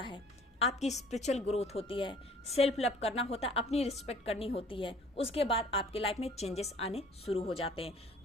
है। आपकी स्पिरिचुअल ग्रोथ होती है, सेल्फ लव करना होता है, अपनी रिस्पेक्ट करनी होती है। उसके बाद आपके लाइफ में चेंजेस आने शुरू हो जाते हैं।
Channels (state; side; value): normal; both; correlation 0.53